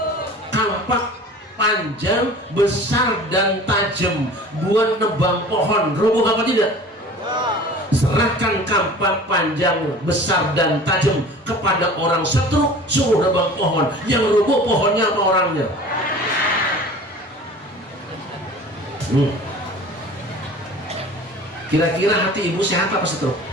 Kampak panjang, besar dan tajam, buat nebang pohon rubuh apa tidak? Serahkan kampak panjang, besar dan tajam kepada orang setruk, suruh nebang pohon. Yang rubuh pohonnya apa orangnya? Kira-kira hati ibu sehat apa setruk?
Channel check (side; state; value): both; normal; correlation 0.42